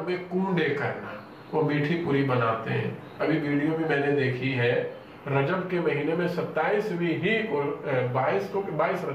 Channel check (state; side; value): identical; both; correlation 1.00